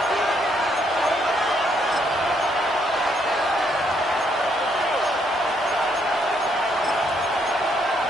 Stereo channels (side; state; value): both; normal; correlation 0.72